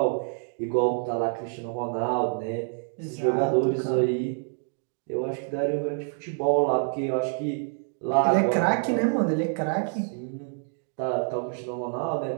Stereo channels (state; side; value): silent; left; 60 dB below the other